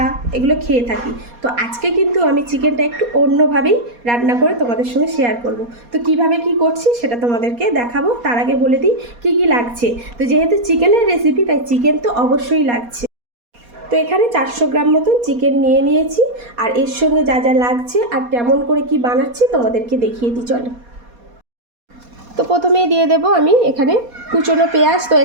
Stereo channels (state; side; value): late; left; 4.2 ms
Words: এগুলো খেয়ে থাকি। তো আজকে কিন্তু আমি চিকেনটা একটু অন্যভাবেই রান্না করে তোমাদের সঙ্গে শেয়ার করব। তো কিভাবে কি করছি সেটা তোমাদেরকে দেখাবো। তার আগে বলে দিই কী কী লাগছে। তো যেহেতু চিকেনের রেসিপি, তাই চিকেন তো অবশ্যই লাগছে। তো এখানে 400 গ্রাম মতন চিকেন নিয়ে নিয়েছি, আর এর সঙ্গে যা যা লাগছে আর কেমন করে কি বানাচ্ছি তোমাদেরকে দেখিয়ে দিই, চলো। তো প্রথমেই দিয়ে দেব আমি এখানে কুচনো পেঁয়াজ। তো